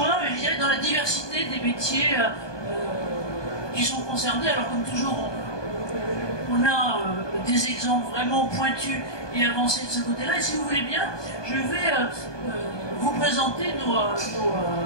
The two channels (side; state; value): right; late; 1.2 ms